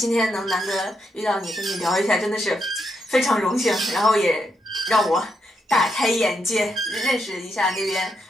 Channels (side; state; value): both; normal; correlation 0.81